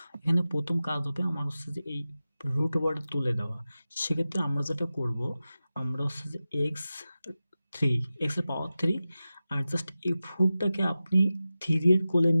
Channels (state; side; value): inverted; both; correlation -0.94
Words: এখানে প্রথম কাজ হবে আমার হচ্ছে যে এই রুট ওভারটা তুলে দেওয়া। সেক্ষেত্রে আমরা যেটা করব, আমরা হচ্ছে যে x এর পাওয়ার 3, আর জাস্ট এই 4টাকে আপনি 3 এর কোলে